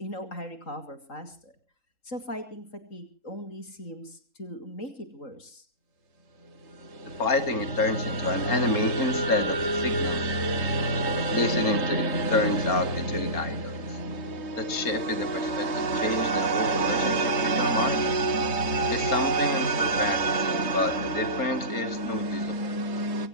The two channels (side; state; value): right; late; 3.8 ms